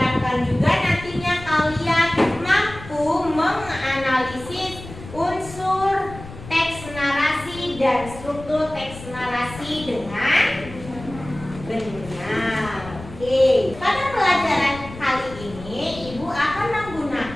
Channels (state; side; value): noise; left; rumble, 15 dB below the sound